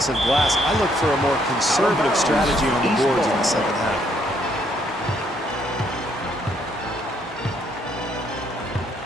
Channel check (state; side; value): normal; both; correlation 0.70